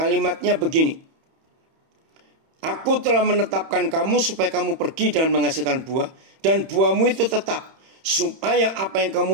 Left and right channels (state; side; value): late; left; 31 ms